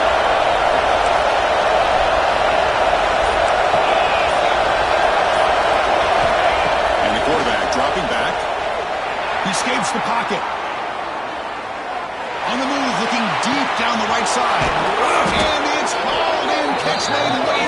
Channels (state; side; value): identical; both; correlation 1.00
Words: And the quarterback dropping back. He escapes the pocket. On the move, looking deep down the right side. And it's hauled in. Catch made way